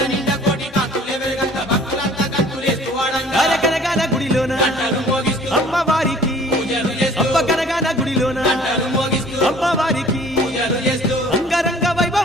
కనగాన గుడిలోన అమ్మవారికి అమ్మ కనగాన గుడిలోన అమ్మవారికి అంగరంగ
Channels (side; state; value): both; normal; correlation 0.52